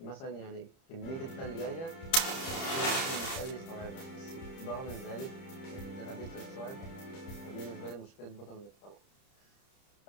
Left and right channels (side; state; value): right; late; 30 ms